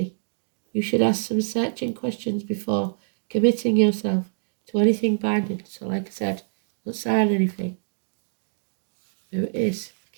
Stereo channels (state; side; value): silent; left; digital silence